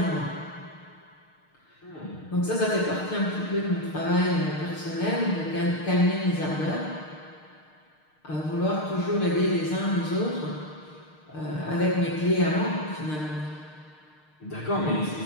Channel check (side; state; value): right; late; 6.5 ms